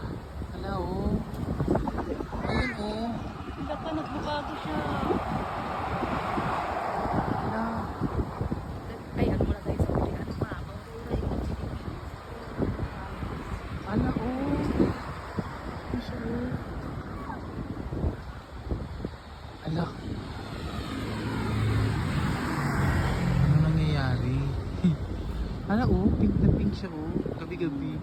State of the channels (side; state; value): both; identical; correlation 1.00